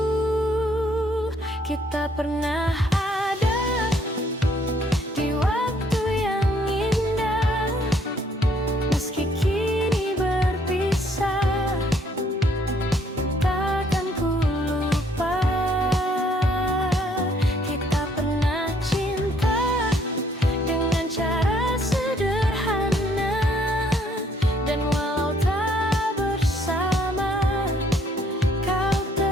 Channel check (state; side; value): normal; both; correlation 0.66